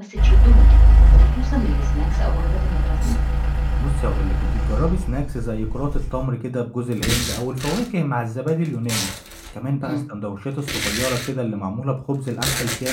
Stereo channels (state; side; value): identical; both; correlation 1.00